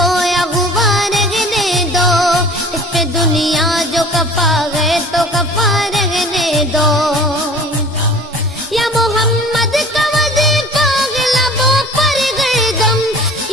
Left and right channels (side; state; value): both; normal; correlation 0.45